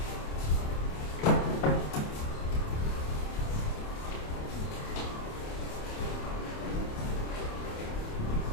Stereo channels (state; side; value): late; right; 28 ms